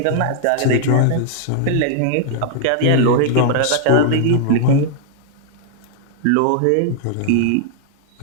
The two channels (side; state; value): both; different; correlation -0.01